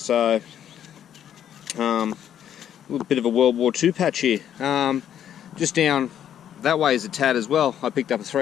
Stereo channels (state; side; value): quieter; right; 10.0 dB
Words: a little bit of a World War II patch here. Just down that way is a tad as well. I picked up a